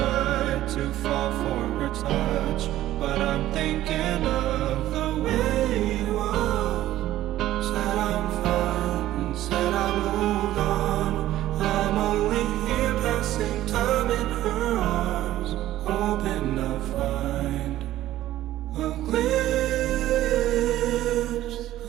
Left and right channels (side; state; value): left; quieter; 14.1 dB